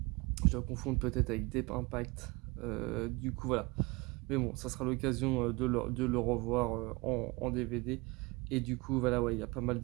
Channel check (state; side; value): quieter; left; 25.2 dB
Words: Je dois confondre peut-être avec Deep Impact. Du coup, voilà. Mais bon, ça sera l'occasion de le revoir en DVD. Et du coup, voilà, ouais, il y a pas mal